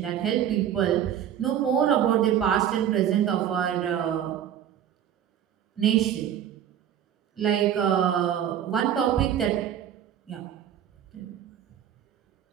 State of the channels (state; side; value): quieter; left; 10.0 dB